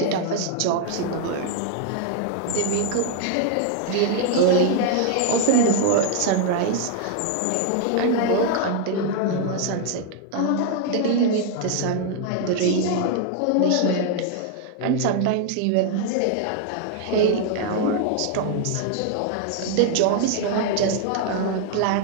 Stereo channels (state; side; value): different; both; correlation 0.00